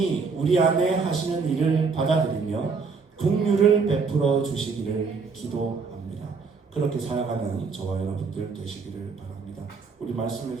우리 안에 하시는 일을 받아들이며 긍휼을 베풀어 주시기를 기도합니다. 그렇게 살아가는 저와 여러분들 되시기를 바랍니다. 우리 말씀을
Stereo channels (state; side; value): quieter; left; 4.9 dB